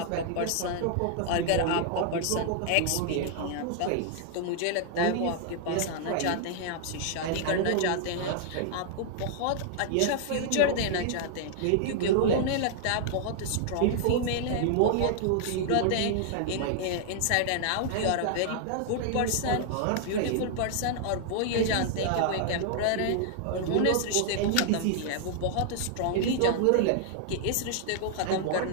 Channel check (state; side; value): different; both; correlation -0.01